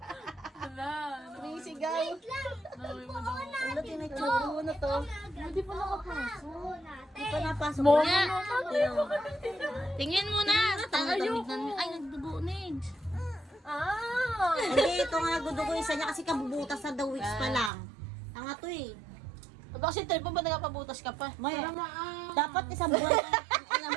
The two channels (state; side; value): drops out; left; at 17.7 s